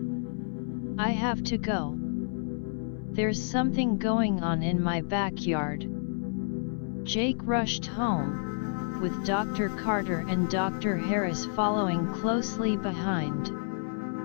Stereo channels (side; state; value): right; silent; 58 dB below the other